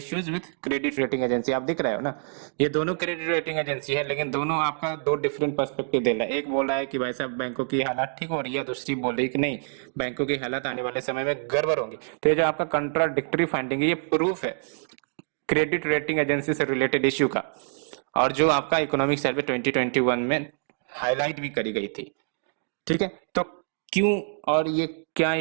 with credit rating agency. आप दिख रहे हो ना, ये दोनों क्रेडिट रेटिंग एजेंसी है, लेकिन दोनों आपका दो डिफरेंट पर्सपेक्टिव दे रहा है। एक बोल रहा है कि भाई साहब बैंकों की हालत ठीक हो रही है, दूसरी बोल रही है कि नहीं, बैंकों की हालत आने वाले समय में गड़बड़ होंगी। तो ये जो आपका कंट्राडिक्टरी फाइंडिंग है ये प्रूफ है क्रेडिट रेटिंग एजेंसी से रिलेटेड इश्यू का, और जो आपका इकोनॉमिक सर्वे 2021 में हाईलाइट भी करी गई थी। ठीक है, तो क्यों और ये क्या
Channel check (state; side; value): silent; left; digital silence